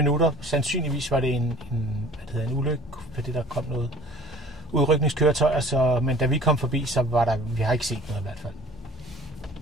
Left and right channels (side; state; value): both; normal; correlation 0.48